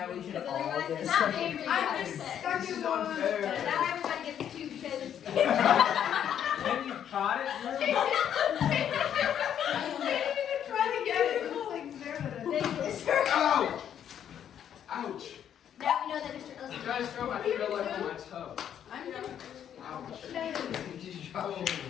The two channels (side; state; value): right; quieter; 9.5 dB